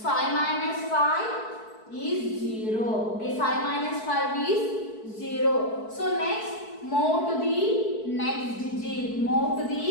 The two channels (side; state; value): right; late; 4.6 ms